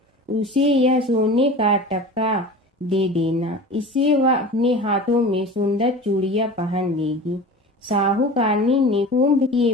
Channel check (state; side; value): normal; both; correlation 0.35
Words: उसे यह सोने का टक्का दे देना, इससे वह अपने हाथों में सुंदर चूड़ियां पहन लेगी। साहूकारनी ने कुंभ के